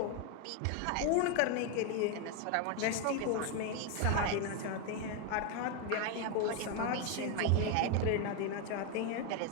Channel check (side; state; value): both; different; correlation 0.01